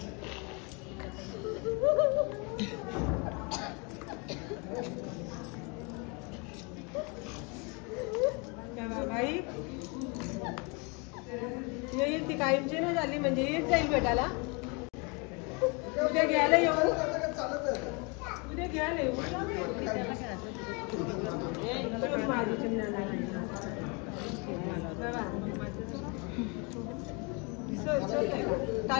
भाई येईल ती कायमची नाही झाली म्हणजे येत जाईल भेटायला. उद्या घ्यायला येऊ. माझी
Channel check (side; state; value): right; quieter; 31.5 dB